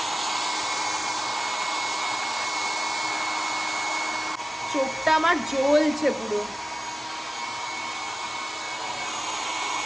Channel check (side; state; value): both; normal; correlation 0.97